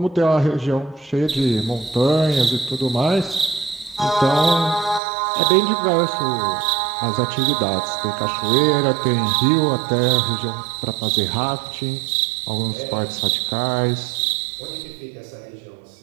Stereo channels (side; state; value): left; drops out; at 5.0 s